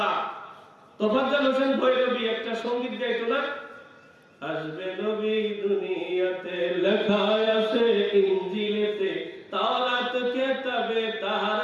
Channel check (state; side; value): identical; both; correlation 1.00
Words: তোফাজ্জল হোসেন ভৈরবী একটা সঙ্গীত গাইতো না, আসবে নবী দুনিয়াতে, লেখা আছে ইনজিলেতে, তাওরাত কিতাবে তার